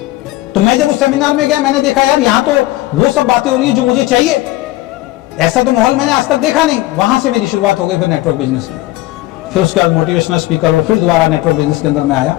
तो मैं जब उस सेमिनार में गया, मैंने देखा यार यहाँ तो वो सब बातें हो रही है जो मुझे चाहिए। ऐसा तो माहौल मैंने आज तक देखा नहीं। वहां से मेरी शुरुआत हो गई फिर नेटवर्क बिजनेस की। फिर उसके बाद मोटिवेशनल स्पीकर और फिर दोबारा नेटवर्क बिजनेस के अंदर मैं आया।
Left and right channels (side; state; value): right; quieter; 17.6 dB